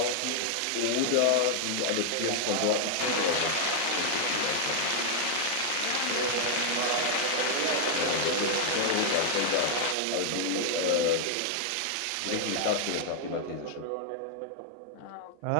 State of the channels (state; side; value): different; both; correlation 0.00